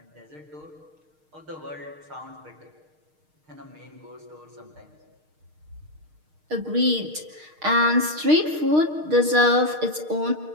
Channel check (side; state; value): left; late; 6.5 ms